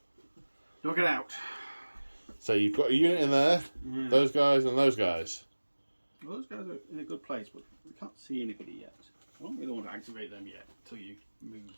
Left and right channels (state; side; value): inverted; both; correlation -1.00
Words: Knock it out. So you've got a unit in there, those guys and those guys. Well, those guys are in a good place, but we can't see anybody yet. I don't really want to activate them yet until you move